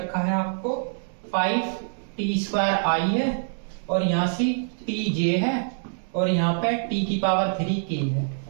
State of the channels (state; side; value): silent; left; digital silence